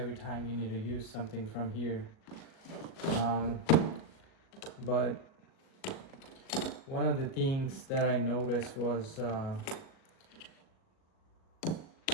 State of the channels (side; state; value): right; late; 38 ms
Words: time you need to use something from here. But one of the things that I noticed was